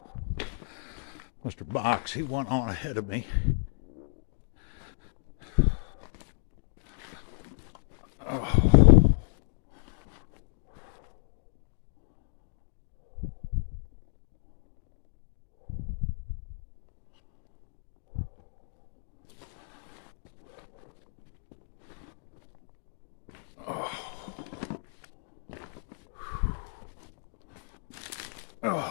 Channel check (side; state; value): right; silent; digital silence